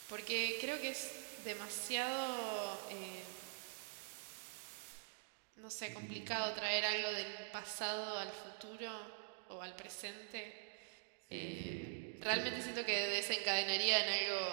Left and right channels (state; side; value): silent; left; digital silence